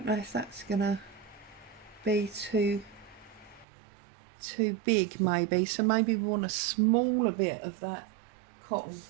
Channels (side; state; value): left; drops out; at 3.7 s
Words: know if that's gonna be too big maybe, so maybe we want a smaller bit of that cotton